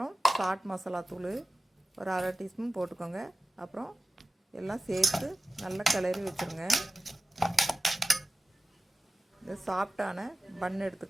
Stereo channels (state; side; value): normal; both; correlation 0.94